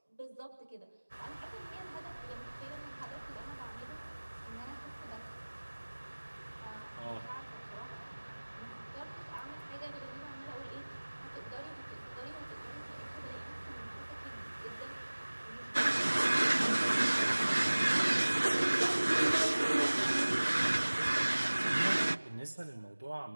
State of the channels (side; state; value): both; inverted; correlation -1.00